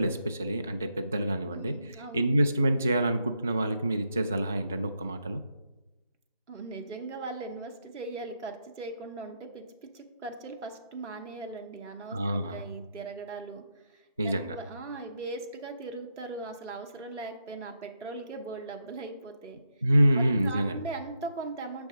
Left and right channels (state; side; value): inverted; both; correlation -0.80